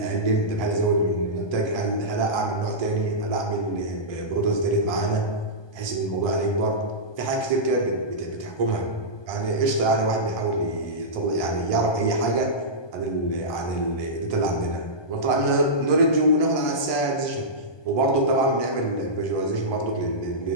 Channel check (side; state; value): right; late; 1.2 ms